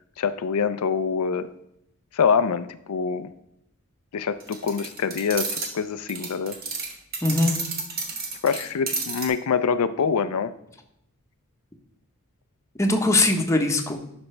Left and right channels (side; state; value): right; quieter; 3.6 dB